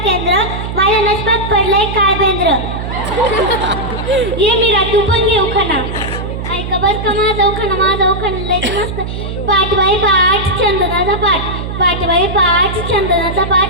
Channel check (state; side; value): noise; right; hum, 6 dB below the sound